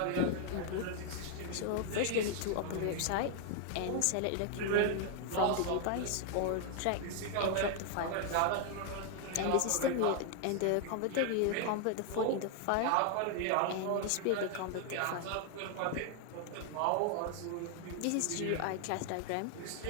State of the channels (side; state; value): both; different; correlation 0.00